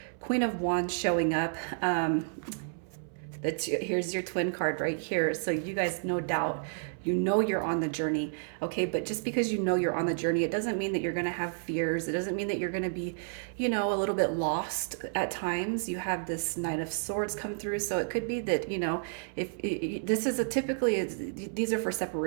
Queen of Wands showing up. Here's your twin card right here. So you guys, no doubt, you know you're on the journey. Okay, but just because you know you're on the journey, it doesn't mean that you're going to have fears. It doesn't mean that you're going to be, a little bit lost at times. You have this Knight of Swords come through, so it could be that, if this is a typically these are for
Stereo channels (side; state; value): left; silent; 57 dB below the other